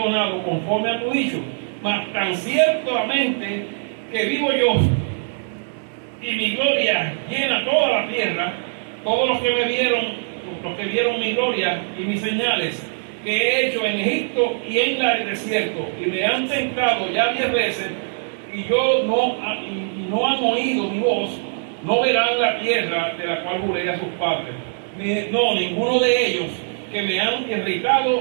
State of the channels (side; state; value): left; silent; digital silence